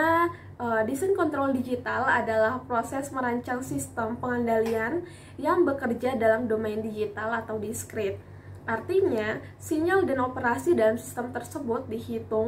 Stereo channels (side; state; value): both; identical; correlation 1.00